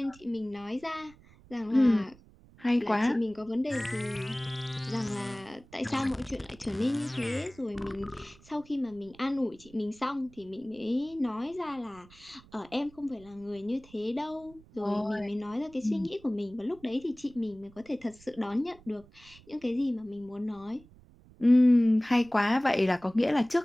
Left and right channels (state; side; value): noise; right; rumble, 24 dB below the sound